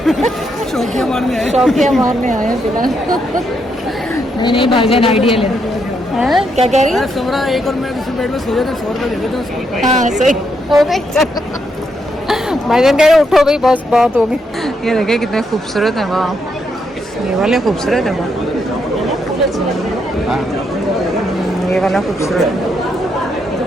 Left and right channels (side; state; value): both; normal; correlation 0.78